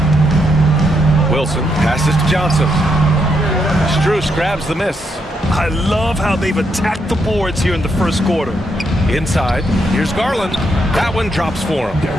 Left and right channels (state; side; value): normal; both; correlation 0.78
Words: Wilson passes to Johnson. Strus grabs the miss. I love how they've attacked the boards here in the first quarter. Inside, here's Garland. That one drops for him.